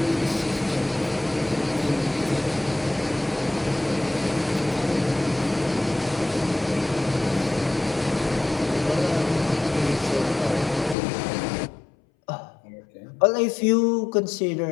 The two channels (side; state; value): right; drops out; at 11.0 s